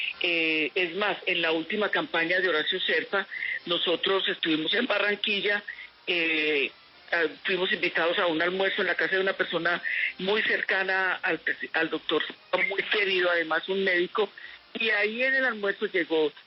Es más, en la última campaña de Horacio Serpa, nosotros estuvimos en Barranquilla, fuimos invitados a un almuerzo en la casa de una persona muy cercana al doctor, muy querido, además un médico, y ahí en el almuerzo llegó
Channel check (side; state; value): both; identical; correlation 1.00